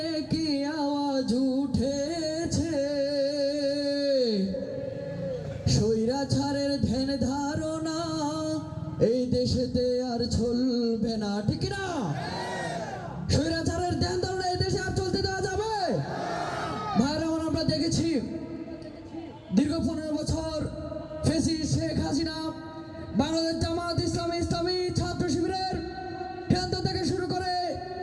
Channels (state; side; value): identical; both; correlation 1.00